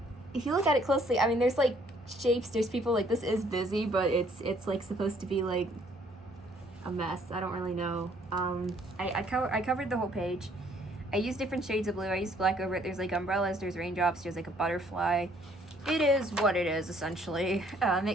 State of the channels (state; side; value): normal; both; correlation 0.63